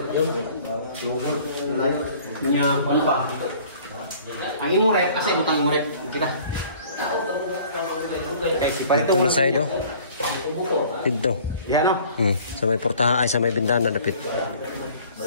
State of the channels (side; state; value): both; inverted; correlation -0.51